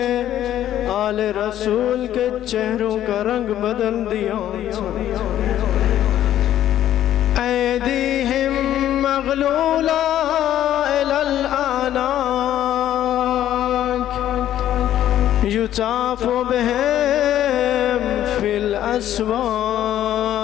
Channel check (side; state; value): right; quieter; 11.9 dB